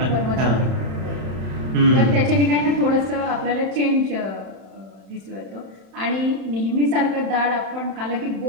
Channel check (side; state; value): left; late; 31 ms